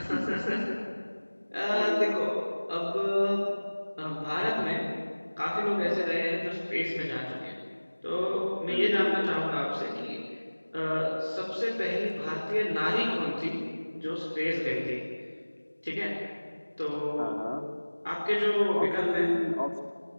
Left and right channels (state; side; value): inverted; both; correlation -1.00